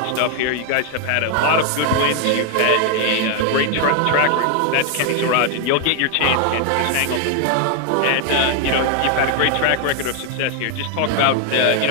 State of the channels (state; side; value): different; both; correlation 0.00